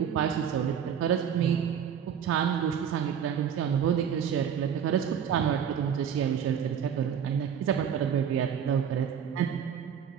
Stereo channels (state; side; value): quieter; left; 8.2 dB